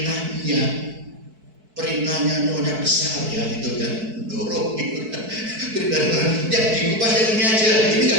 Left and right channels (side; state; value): left; late; 4.6 ms